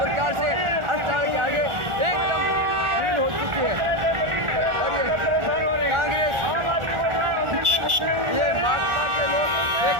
से अस्पताल के आगे एकदम भीड़ हो चुकी है और ये कांग्रेस, ये भाजपा के लोग, एक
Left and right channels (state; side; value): late; left; 1.4 ms